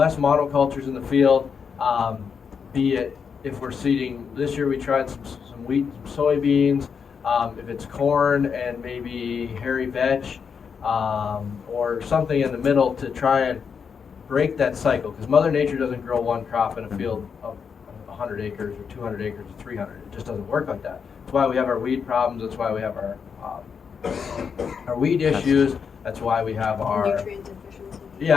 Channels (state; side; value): quieter; right; 6.4 dB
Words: in the field, be it if we're seeding, this year we tried some wheat, some soybeans, if it's corn and maybe hairy veg, or something in the middle to try and break that cycle, because Mother Nature doesn't grow one crop in a field of 100 acres or 200 acres or 300. It just doesn't work like that. That's why we have our weed problems. That's why we have our weed issues. That's why we have our Nutrient deficiency.